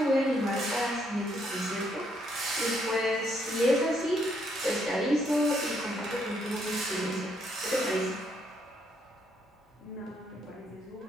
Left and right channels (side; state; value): both; normal; correlation 0.73